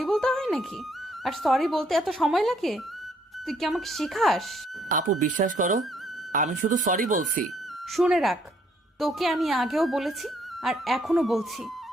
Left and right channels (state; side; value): normal; both; correlation 0.67